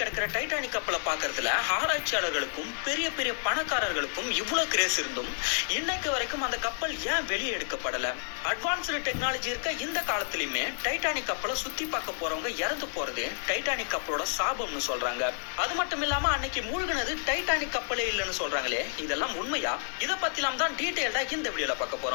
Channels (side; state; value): right; silent; 58 dB below the other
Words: கிடக்கிற டைட்டானிக் கப்பலை பார்க்கறதுல ஆராய்ச்சியாளர்களுக்கும் பெரிய பெரிய பணக்காரர்களுக்கும் இவ்வளவு கிரேஸ் இருந்தும் இன்னைக்கு வரைக்கும் அந்த கப்பல் ஏன் வெளியே எடுக்கப்படல? அட்வான்ஸ்டு டெக்னாலஜி இருக்க இந்த காலத்திலுமே டைட்டானிக் கப்பலை சுத்தி பார்க்க போறவங்க இறந்து போறது டைட்டானிக் கப்பலோட சாபம்னு சொல்றாங்க. அது மட்டும் இல்லாம அன்னைக்கு மூழ்கினது டைட்டானிக் கப்பலே இல்லைன்னு சொல்றாங்களே, இதெல்லாம் உண்மையா? இத பத்திலாம் தான் டீடைல்டா இந்த வீடியோல பார்க்க